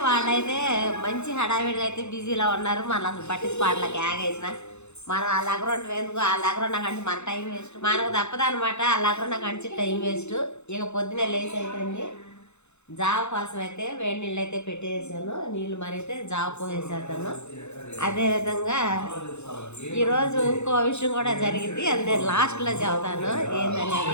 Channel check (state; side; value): late; right; 0.82 ms